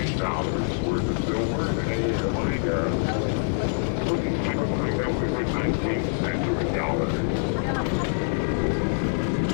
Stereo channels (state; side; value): silent; right; 62 dB below the other